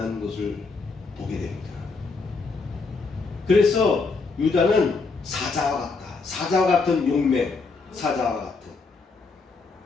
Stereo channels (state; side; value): quieter; right; 4.2 dB